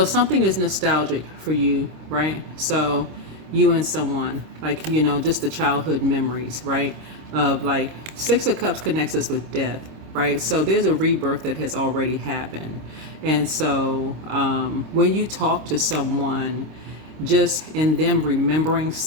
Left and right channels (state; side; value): late; left; 26 ms